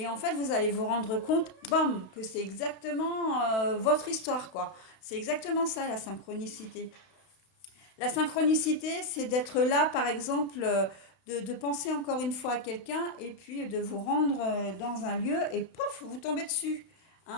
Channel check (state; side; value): late; right; 32 ms